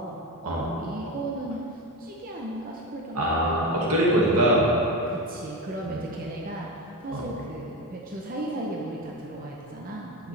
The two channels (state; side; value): normal; both; correlation 0.19